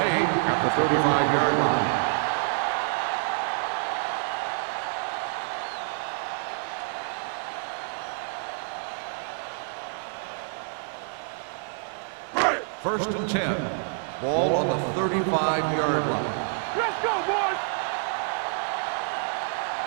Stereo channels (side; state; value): left; silent; 58 dB below the other